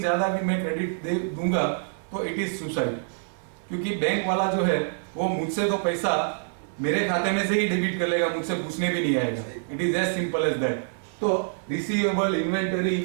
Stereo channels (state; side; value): silent; left; digital silence